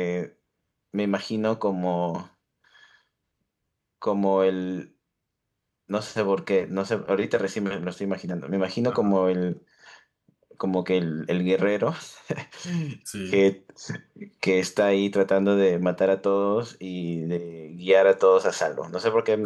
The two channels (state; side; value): identical; both; correlation 1.00